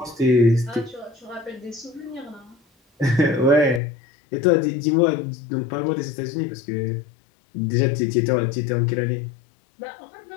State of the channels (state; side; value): drops out; right; at 3.8 s